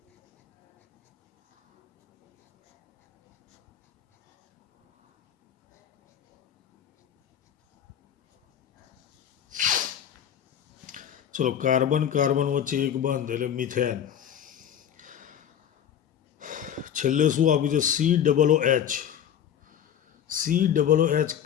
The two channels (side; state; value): right; quieter; 9.4 dB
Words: ચલો કાર્બન કાર્બન વચ્ચે એક બંધ એટલે મિથેન. છેલ્લે શું આપ્યું છે? COOH. COOH